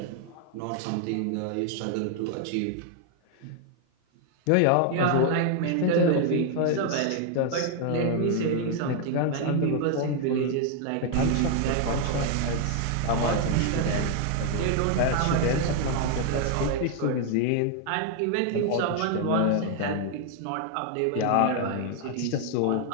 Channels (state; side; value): different; both; correlation 0.00